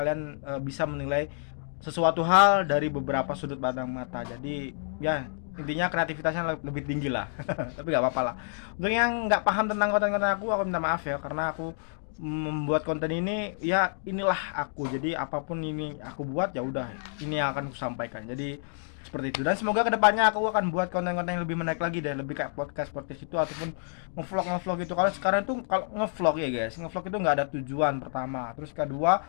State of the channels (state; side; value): silent; right; digital silence